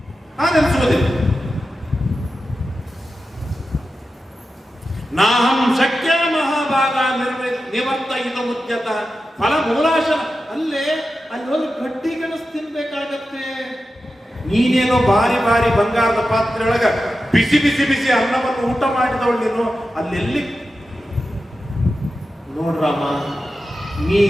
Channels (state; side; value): normal; both; correlation 0.91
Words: ನಾಹಂ ಶಕ್ಯ ಮಹಾಭಾಗ ನಿವರ್ತ ಇದು ಮುದ್ಯತ ಫಲ ಮೂಲಾಶನ. ಅಲ್ಲಿ ಹೋಗಿ ಗಡ್ಡಿ ಗೆಣಸು ತಿನ್ಬೇಕಾಗತ್ತೆ. ನೀನೇನೋ ಬಾರಿ ಬಾರಿ ಬಂಗಾರದ ಪಾತ್ರೆಯೊಳಗ ಬಿಸಿ ಬಿಸಿ ಬಿಸಿ ಅನ್ನವನ್ನು ಊಟ ಮಾಡಿದವಳು ನೀನು. ಅಲ್ಲೆಲ್ಲಿ ನೋಡ್ರಾಮ, ನೀ